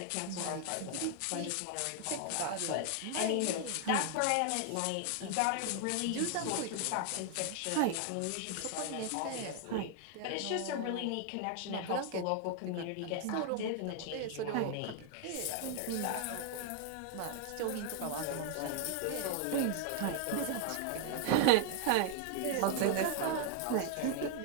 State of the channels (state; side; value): different; both; correlation 0.00